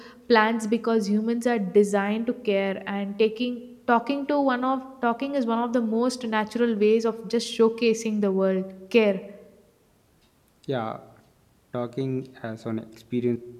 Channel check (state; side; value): identical; both; correlation 1.00